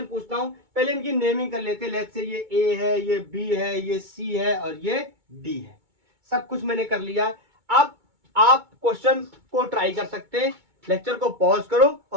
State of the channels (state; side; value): late; left; 2.2 ms